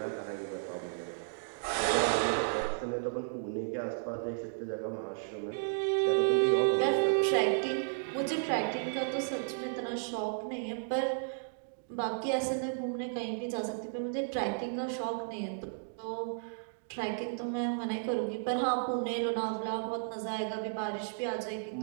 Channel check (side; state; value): left; silent; digital silence